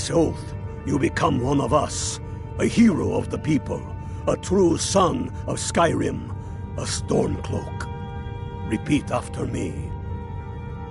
oath, you become one of us, a hero of the people, a true son of Skyrim, a Stormcloak. Repeat after me.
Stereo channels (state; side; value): identical; both; correlation 1.00